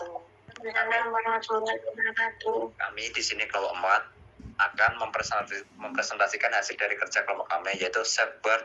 Kami di sini kelompok 4 akan mempresentasikan hasil dari kerja kelompok kami, yaitu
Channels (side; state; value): both; identical; correlation 1.00